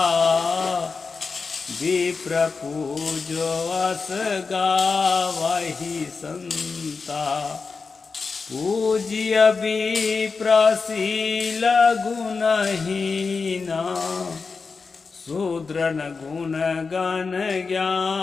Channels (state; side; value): quieter; right; 4.7 dB